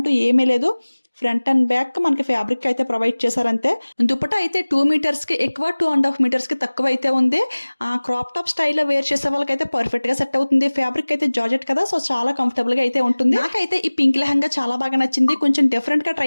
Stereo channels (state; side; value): inverted; both; correlation -1.00